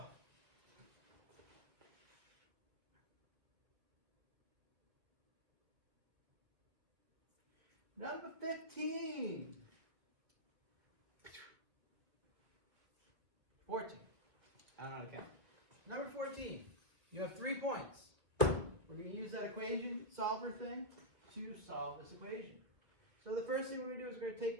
Number 15. 14. I don't know how to count. Number 14. You have 3 points. We're going to use that equation solver thing to solve this equation. So the first thing we're going to do is we're going to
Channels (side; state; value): left; late; 1.6 ms